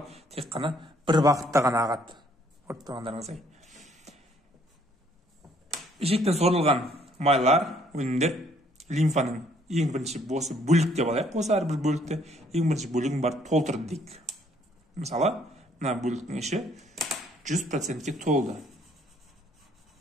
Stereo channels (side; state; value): both; normal; correlation 0.64